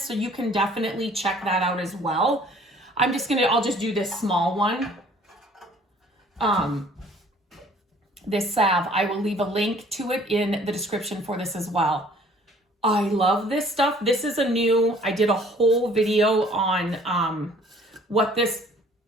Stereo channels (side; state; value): both; normal; correlation 0.55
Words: so you can definitely check that out as well. I'll just do this small one. This salve, I will leave a link to it in the description for this as well. I love this stuff. This is I did a whole video on what these